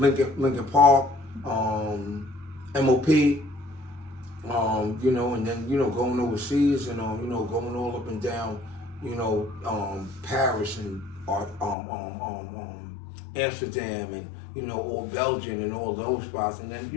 Park, MOP, you know, and then, you know, going overseas and, you know, going all up and down, you know, Paris and Amsterdam and, you know, all Belgium and all those spots. And then,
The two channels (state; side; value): drops out; right; at 11.8 s